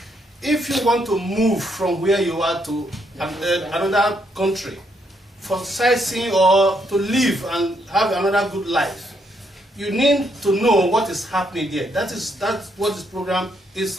if you want to move from where you are to another country for sightseeing or to live and have another good life, you need to know what is happening there. That's what this program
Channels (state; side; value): normal; both; correlation 0.75